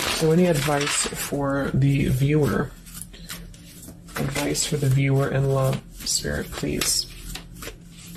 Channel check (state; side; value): identical; both; correlation 1.00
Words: So any advice for the viewer? Advice for the viewer in love, Spirit, please.